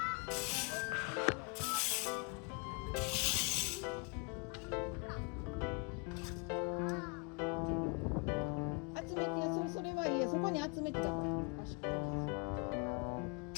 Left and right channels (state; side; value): quieter; right; 33.6 dB